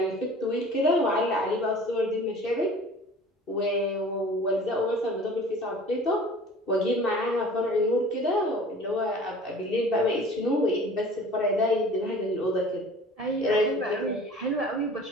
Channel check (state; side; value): normal; both; correlation 0.45